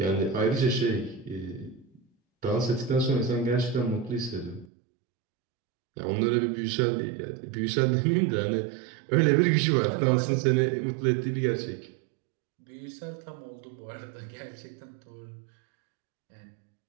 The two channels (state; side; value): drops out; left; at 4.7 s